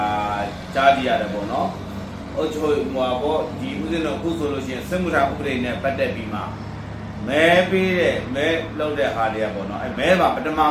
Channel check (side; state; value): both; identical; correlation 1.00